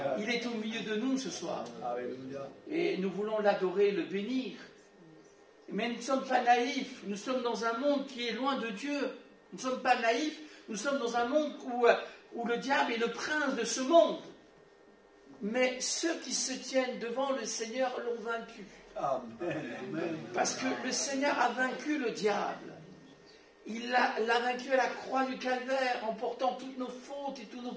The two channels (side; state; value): both; identical; correlation 1.00